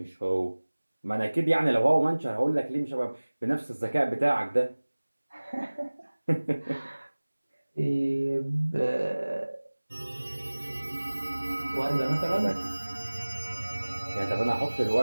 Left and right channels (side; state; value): both; inverted; correlation -1.00